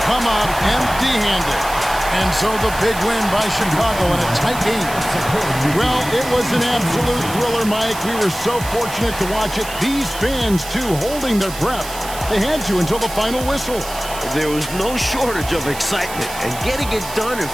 come out empty-handed. And so the big win by Chicago in a tight game. Well, it was an absolute thriller, Mike. We were so fortunate to watch it. These fans, too, holding their breath. They had to until the final whistle. There was no shortage of excitement, and getting it done in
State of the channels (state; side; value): noise; right; hiss, 12 dB below the sound